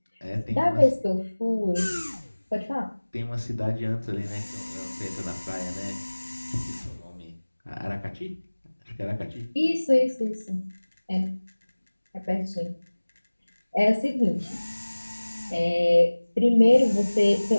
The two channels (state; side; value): inverted; both; correlation -1.00